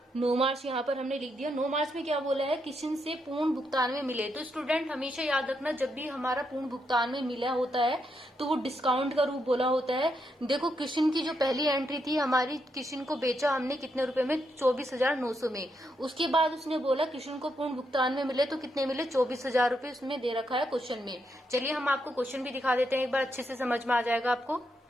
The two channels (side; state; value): both; normal; correlation 0.80